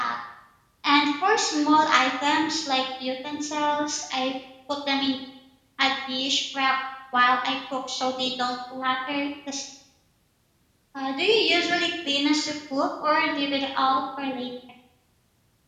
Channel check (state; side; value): identical; both; correlation 1.00